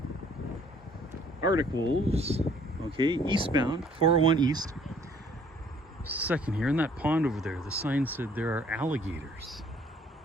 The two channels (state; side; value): normal; both; correlation 0.59